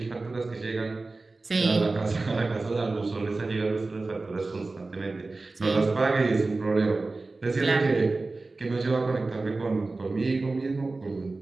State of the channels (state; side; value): quieter; left; 3.4 dB